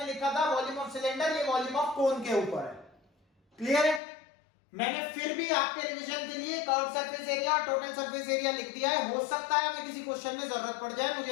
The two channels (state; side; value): drops out; right; at 4.0 s